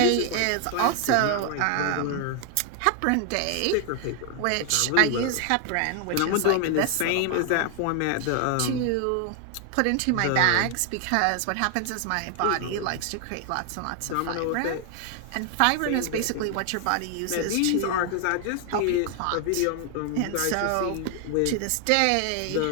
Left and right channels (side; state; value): both; different; correlation 0.00